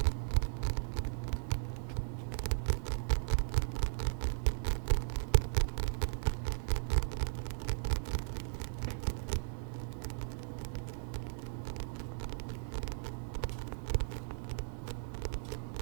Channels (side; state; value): left; silent; digital silence